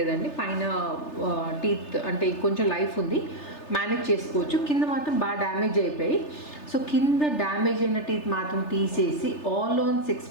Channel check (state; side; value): late; right; 3.3 ms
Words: పైన టీత్ అంటే కొంచెం లైఫ్ ఉంది, మేనేజ్ చేసుకోవచ్చు. కింద మాత్రం బాగా డ్యామేజ్ అయిపోయి, సో కింద డ్యామేజ్ అయిన టీత్ మాత్రం తీసేసి ఆల్ ఆన్ 6